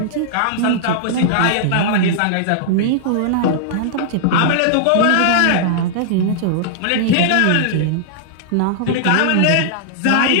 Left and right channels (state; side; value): different; both; correlation -0.01